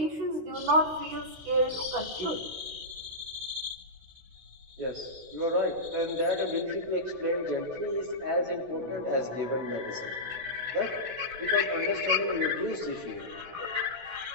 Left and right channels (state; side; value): late; left; 16 ms